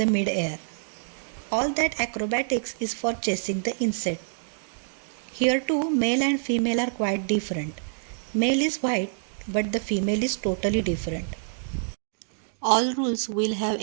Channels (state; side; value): silent; left; digital silence